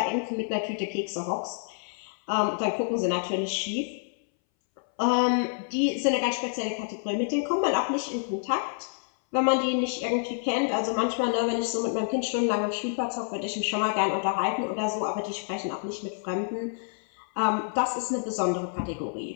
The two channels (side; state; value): right; silent; 59 dB below the other